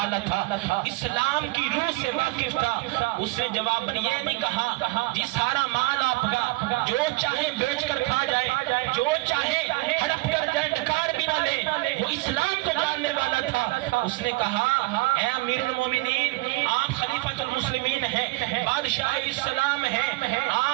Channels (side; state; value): left; quieter; 23.0 dB